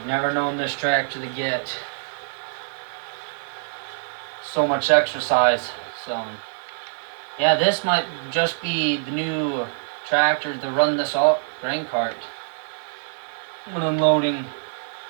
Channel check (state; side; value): silent; left; digital silence